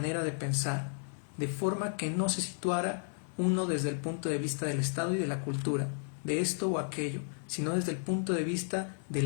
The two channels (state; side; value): silent; right; 56 dB below the other